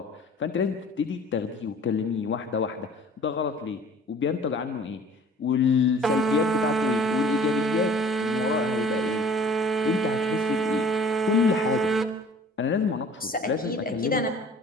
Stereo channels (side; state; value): both; normal; correlation 0.49